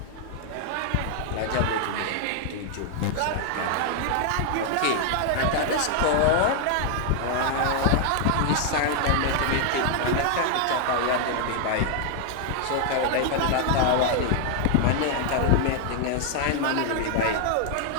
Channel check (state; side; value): different; both; correlation 0.00